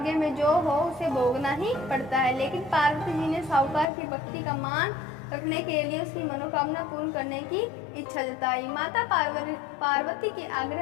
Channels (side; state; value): right; drops out; at 3.9 s